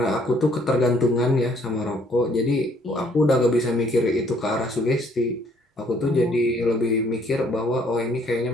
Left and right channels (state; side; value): normal; both; correlation 0.63